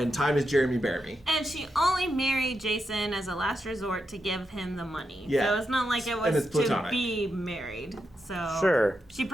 time is Jeremy Bearimy. And she only married Jason as a last resort to give him the money. Yeah. So it's not like it And was it's to platonic. be married. So Sure. she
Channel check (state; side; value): normal; both; correlation 0.85